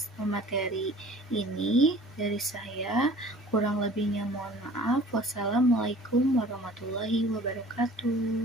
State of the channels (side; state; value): both; normal; correlation 0.48